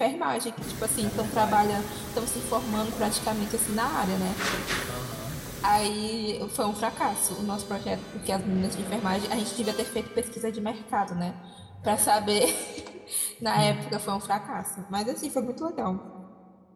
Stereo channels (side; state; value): both; identical; correlation 1.00